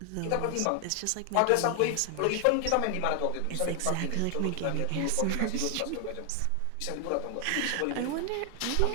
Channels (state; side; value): different; both; correlation 0.00